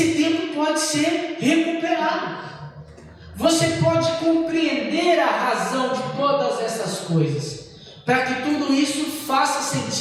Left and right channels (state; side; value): identical; both; correlation 1.00